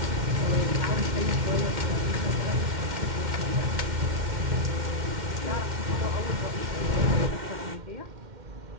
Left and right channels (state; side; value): late; left; 2.1 ms